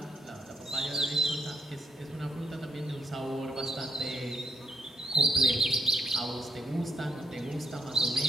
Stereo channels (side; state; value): both; normal; correlation 0.74